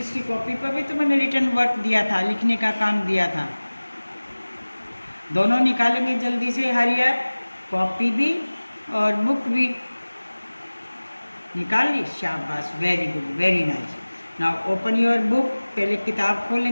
की कॉपी पर भी तो मैंने रिटन वर्क दिया था, लिखने का काम दिया था। दोनों निकालेंगे जल्दी से, हरी अप, कॉपी भी और बुक भी निकाल ली, शाबाश, very good, very nice. Now open your book, पहले किताब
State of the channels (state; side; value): inverted; both; correlation -1.00